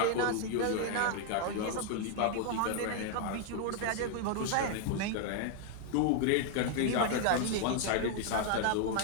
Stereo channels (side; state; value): both; different; correlation 0.00